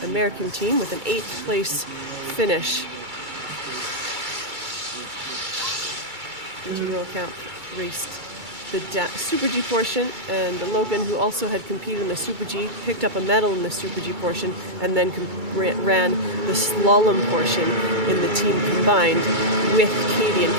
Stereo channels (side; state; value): left; late; 2.3 ms